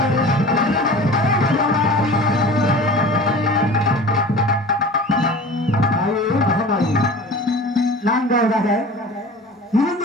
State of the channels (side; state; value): both; normal; correlation 0.39